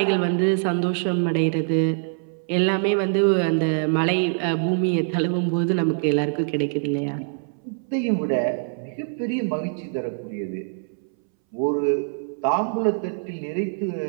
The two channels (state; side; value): silent; left; 63 dB below the other